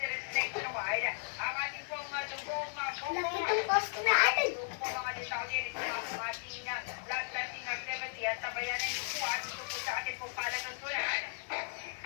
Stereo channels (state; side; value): silent; right; digital silence